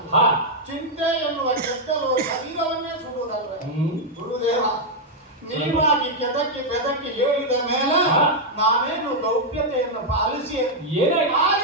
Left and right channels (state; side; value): normal; both; correlation -0.02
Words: ಚಿಂತೆ ಎನ್ನುವ ಗೆದ್ದಲು ಶರೀರವನ್ನೇ ಸುಡುವುದಲ್ಲ. ಗುರುದೇವ, ನೀವಾಗಿ ಕೆದಕಿ ಬೆದಕಿ ಹೇಳಿದ ಮೇಲೆ ನಾವೇನು ಗೌಪ್ಯತೆಯನ್ನು ಪಾಲಿಸಿ